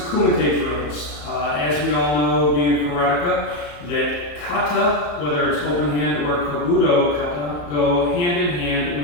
drills. As we all know, being karateka, that kata, whether it's open hand or kabuto kata, go hand in hand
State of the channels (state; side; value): late; right; 34 ms